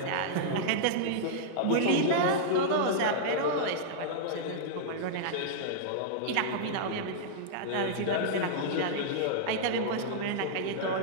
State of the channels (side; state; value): both; different; correlation -0.02